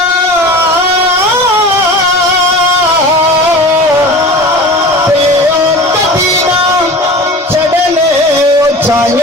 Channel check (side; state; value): both; normal; correlation 0.36